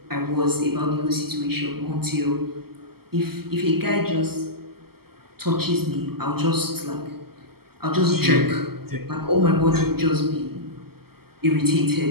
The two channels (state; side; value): late; left; 0.95 ms